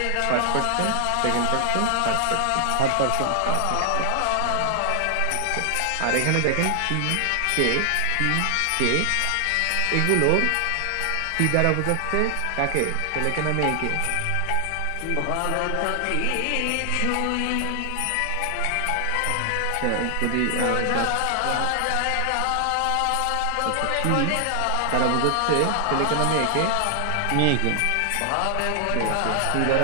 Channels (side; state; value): both; different; correlation 0.00